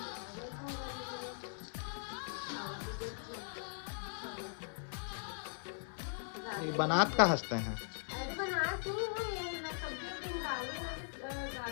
ये बनात का हंसते हैं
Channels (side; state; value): right; silent; 51 dB below the other